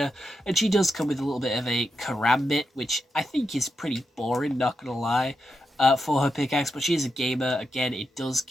and she does come with a little bit of a karambit, which I think is pretty boring, not gonna lie, for her pickaxe, but she is a gamer. Again, it does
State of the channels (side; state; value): both; normal; correlation 0.86